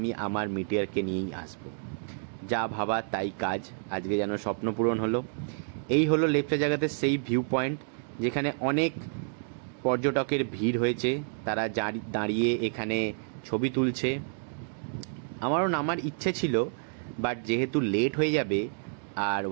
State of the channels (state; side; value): silent; left; digital silence